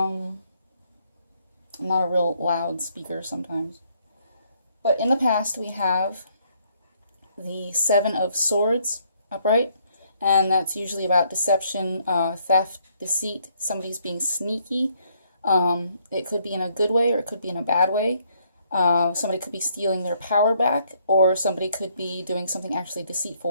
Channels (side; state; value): both; inverted; correlation -0.69